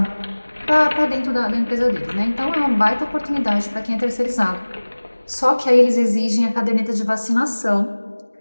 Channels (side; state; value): both; inverted; correlation -1.00